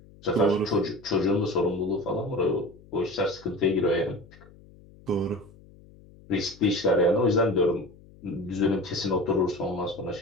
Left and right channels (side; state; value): left; noise; hum, 24 dB below the sound